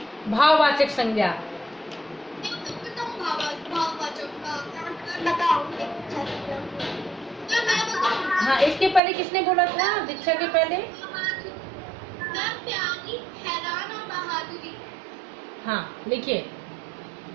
भाववाचक संज्ञा। हाँ, इसके पहले किसने बोला था? दीक्षा के पहले। हाँ, लिखिए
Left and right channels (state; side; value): drops out; left; at 9.0 s